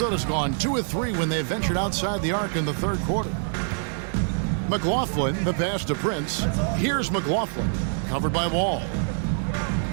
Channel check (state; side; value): silent; left; 61 dB below the other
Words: gone 2 of 3 when they ventured outside the arc in the third quarter. McLaughlin, the pass to Prince. Here's McLaughlin, covered by Wall.